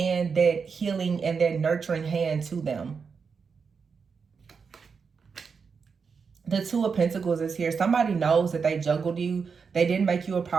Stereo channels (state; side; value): quieter; left; 5.6 dB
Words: that healing and that nurturing hand to them. The 2 of Pentacles is here. Somebody knows that they juggled you. They didn't make you a